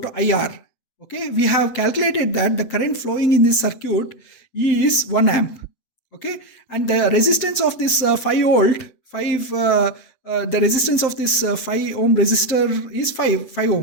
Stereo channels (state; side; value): late; right; 7.7 ms